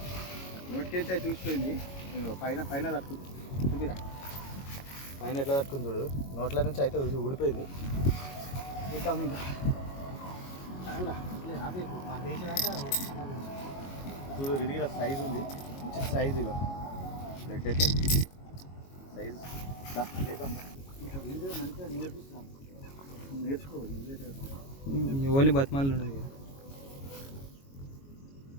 నోటికెంచి అయితే చూసిపోయింది. పైన పైన తట్టుకు చూపిరా, పైన ఎట్లా తట్టుకుని చూడు. నోట్ల నుంచి అయితే ఊడిపోయింది. చూద్దాం ఇంకా చూడు, ఇది సైజు ఉంది, మంచి సైజు. ఇక బ్లడ్ అయితే సైజు ఇంకా వీడియో మంచిగా నేర్పిస్తాం, నేర్చుకో. ఓన్లీ బతిమాలు ఉండదు.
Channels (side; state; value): right; late; 22 ms